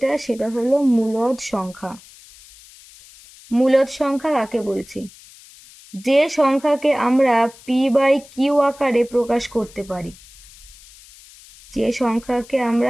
সেটা হলো মূলদ সংখ্যা। মূলদ সংখ্যা কাকে বলছি? যে সংখ্যাকে আমরা p/q আকারে প্রকাশ করতে পারি, যে সংখ্যাকে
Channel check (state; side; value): noise; left; hiss, 22 dB below the sound